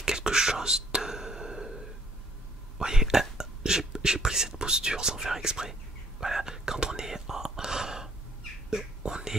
quelque chose de... Vous voyez, j'ai pris cette posture sans faire exprès. Voilà, quand on est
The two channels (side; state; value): both; normal; correlation 0.63